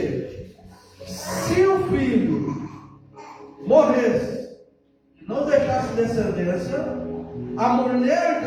Se o filho morresse e não deixasse descendência, a mulher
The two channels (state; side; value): identical; both; correlation 1.00